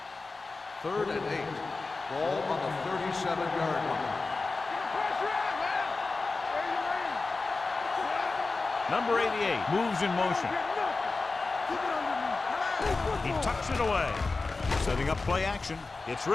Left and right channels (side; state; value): right; quieter; 3.8 dB